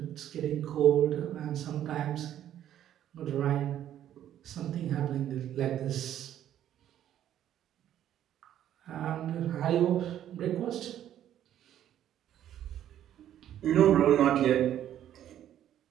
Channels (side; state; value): left; quieter; 11.2 dB